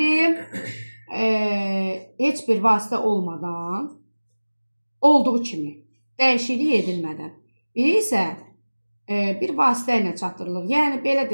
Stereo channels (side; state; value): both; inverted; correlation -1.00